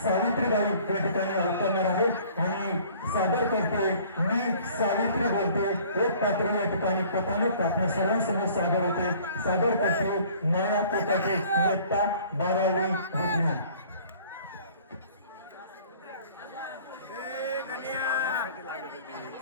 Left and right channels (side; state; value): both; inverted; correlation -0.52